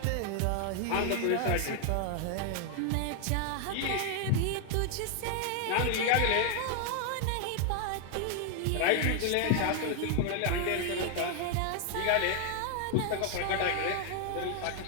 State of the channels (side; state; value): both; different; correlation 0.00